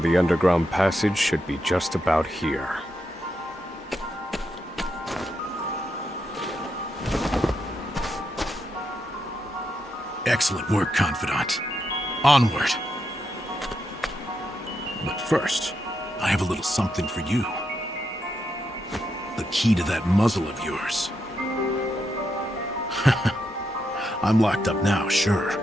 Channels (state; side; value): normal; both; correlation 0.83